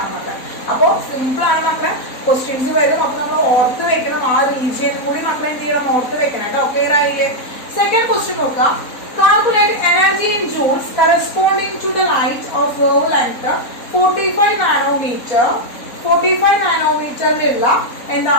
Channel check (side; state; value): right; late; 3.9 ms